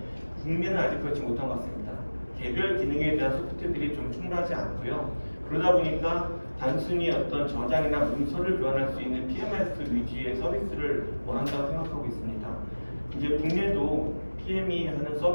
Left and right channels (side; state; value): both; inverted; correlation -1.00